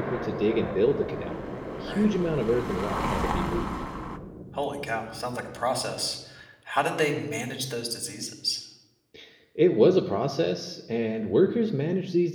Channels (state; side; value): identical; both; correlation 1.00